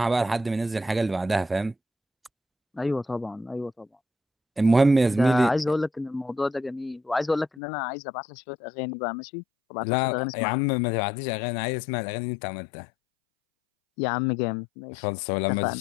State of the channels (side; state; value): right; drops out; at 7.6 s